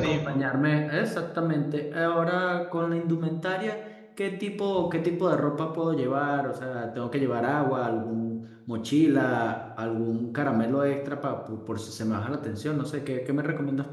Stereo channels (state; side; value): identical; both; correlation 1.00